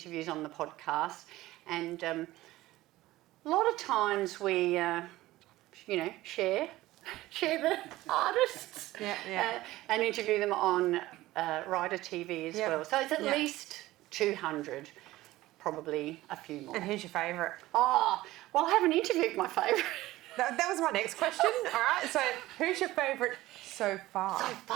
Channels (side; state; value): left; quieter; 17.0 dB